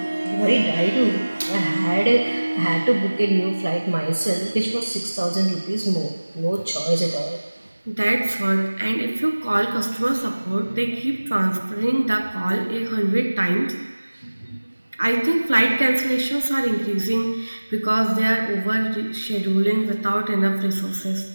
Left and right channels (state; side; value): inverted; both; correlation -1.00